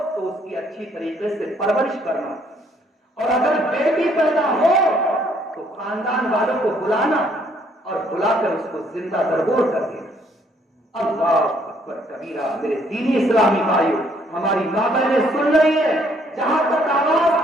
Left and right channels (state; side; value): normal; both; correlation 0.66